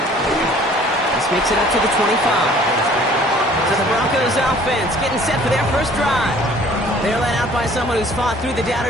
This makes it up to the 25. So the Broncos offense getting set for their first drive. They're led out by someone who's fought through the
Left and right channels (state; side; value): normal; both; correlation 0.53